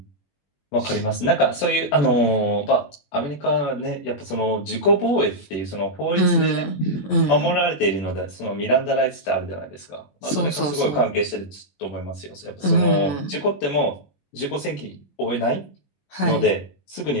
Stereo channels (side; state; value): right; late; 21 ms